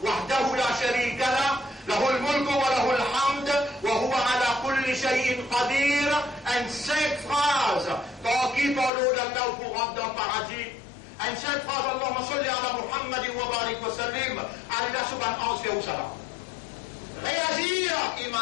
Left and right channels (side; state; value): right; drops out; at 8.9 s